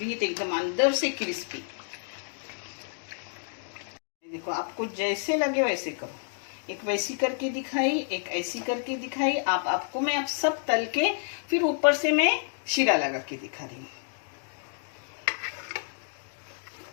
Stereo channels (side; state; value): right; silent; 58 dB below the other